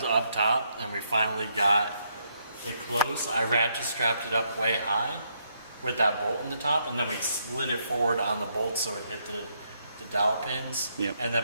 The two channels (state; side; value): inverted; both; correlation -0.75